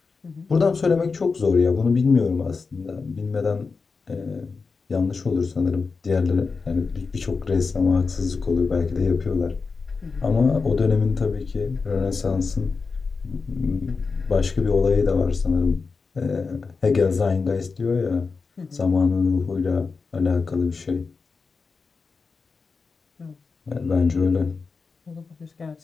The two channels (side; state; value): right; quieter; 4.6 dB